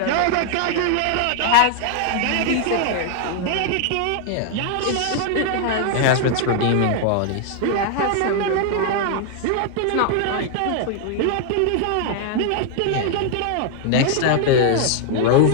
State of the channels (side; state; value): both; different; correlation 0.00